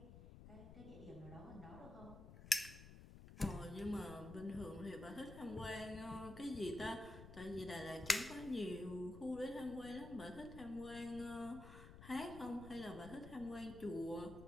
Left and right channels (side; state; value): left; noise; rumble, 13 dB below the sound